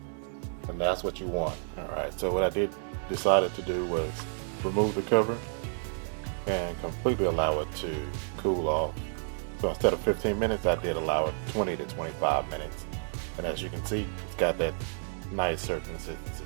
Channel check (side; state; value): left; silent; digital silence